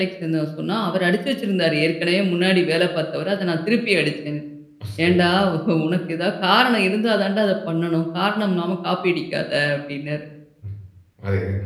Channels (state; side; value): identical; both; correlation 1.00